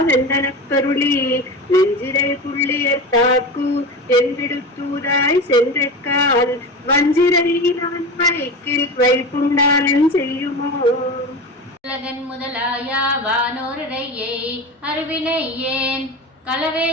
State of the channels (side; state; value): both; normal; correlation 0.27